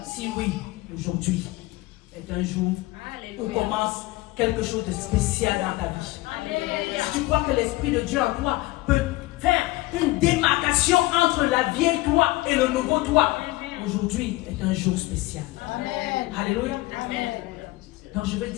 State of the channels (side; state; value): right; quieter; 19.8 dB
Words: Si oui, aujourd'hui est un jour où commence quelque chose de spécial dans ta vie. Si tu crois que l'Esprit de Dieu en toi peut faire une démarcation entre la vieille toi et le nouveau toi, aujourd'hui est un jour spécial. Amen. Alléluia. Amen. Donc je veux